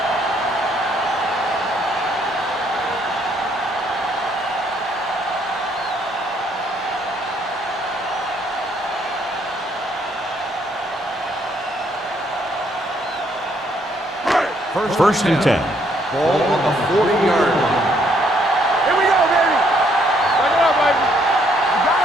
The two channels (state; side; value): normal; both; correlation 0.69